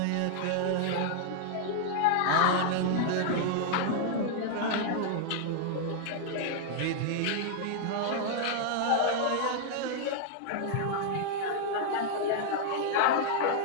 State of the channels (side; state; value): both; different; correlation -0.01